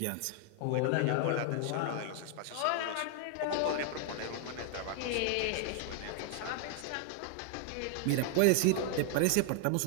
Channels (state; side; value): different; both; correlation 0.00